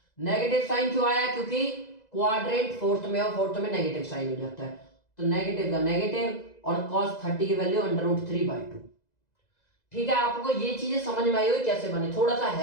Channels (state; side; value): late; right; 2.0 ms